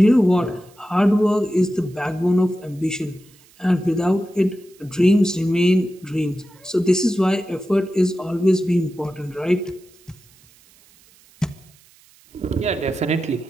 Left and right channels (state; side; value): noise; right; hiss, 29 dB below the sound